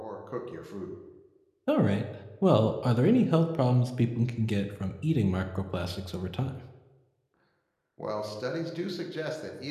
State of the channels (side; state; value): both; identical; correlation 1.00